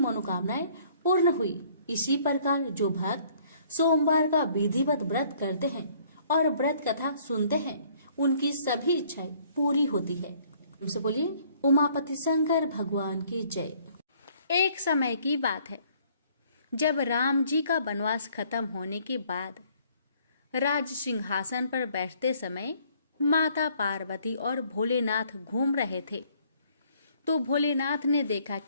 पूर्ण हुई। इसी प्रकार जो भक्त सोमवार का विधिवत व्रत करते हैं और व्रत कथा सुनते हैं, उनकी सभी इच्छाएं पूरी होती है। उनसे बोलिए, उमापति शंकर भगवान की जय। एक समय की बात है, जब राम जी का वनवास खत्म होने के बाद राज सिंहासन पर बैठते समय माता पार्वती और भोलेनाथ घूम रहे थे तो भोलेनाथ ने देखा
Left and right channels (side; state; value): both; inverted; correlation -0.61